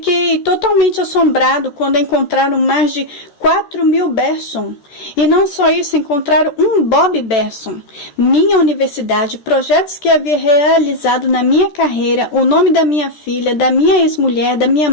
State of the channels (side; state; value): right; late; 13 ms